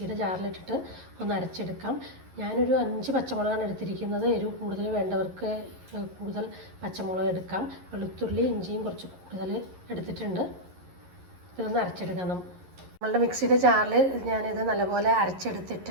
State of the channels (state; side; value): late; left; 11 ms